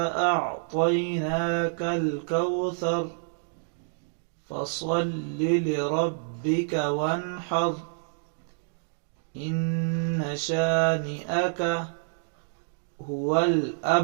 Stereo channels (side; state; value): left; silent; digital silence